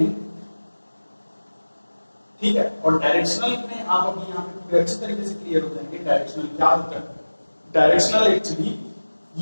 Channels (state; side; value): inverted; both; correlation -1.00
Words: ठीक है। और डायरेक्शनल में आप अभी यहाँ पे पूरे अच्छी तरीके से क्लियर हो जाएंगे डायरेक्शनल क्या होता है। डायरेक्शनल एक्चुअली